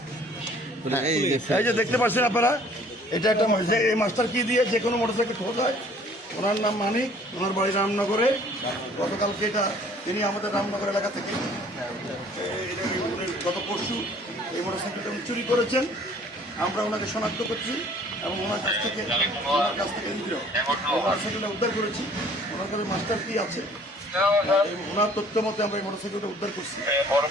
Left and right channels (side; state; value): both; normal; correlation 0.55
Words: এই যে দেখতে পাচ্ছেন আপনারা, এটা একটা এই মাস্টার কি দিয়ে যে কোনো মোটরসাইকেল খোলা যায়। ওনার নাম মানিক, ওনার বাড়ি রামনগরে। গতকালকে এটা তিনি আমাদের রামনগর এলাকা থেকে গত পরশু এই মোটরসাইকেলটা উনি চুরি করেছেন। আমরা ওনাকে শনাক্ত করছি এবং ওনার কাছ থেকে মোটরসাইকেলটা উদ্ধার করেছি। ওনার কাছে মাস্টার কি আছে, ওনার তথ্য মতে আমরা এই মোটরসাইকেলটা উদ্ধার করছি।